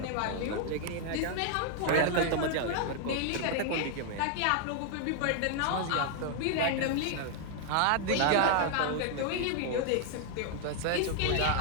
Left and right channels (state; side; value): different; both; correlation 0.00